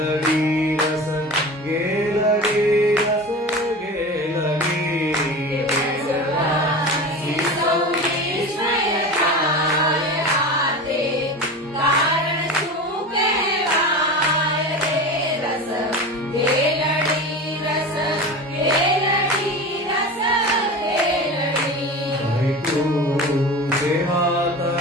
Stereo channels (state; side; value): normal; both; correlation 0.31